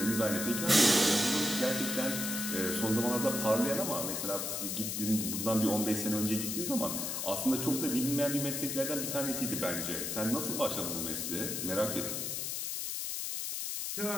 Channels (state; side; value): noise; left; hiss, 2 dB below the sound